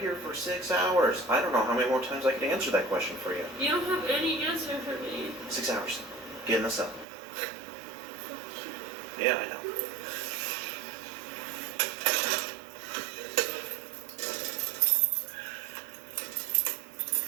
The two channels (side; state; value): left; drops out; at 7.1 s